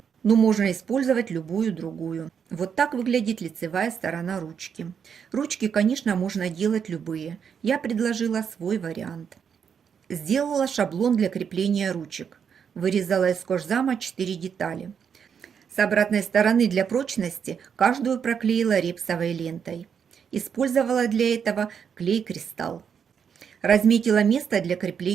но можно использовать любую другую. Вот так выглядит лицевая сторона ручки. Ручки, конечно, можно делать любые. Я предложила свой вариант. Сделала шаблон для крепления ручек. Вырезала из кожзама 4 детали. С обратной стороны для прочности каждую проклеила репсовой лентой. Использовала для этого клей-кристалл. Разметила место для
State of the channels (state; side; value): quieter; left; 7.2 dB